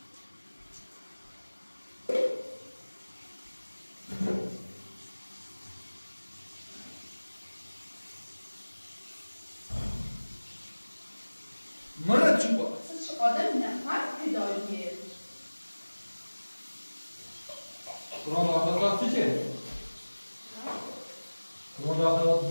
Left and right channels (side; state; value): both; inverted; correlation -1.00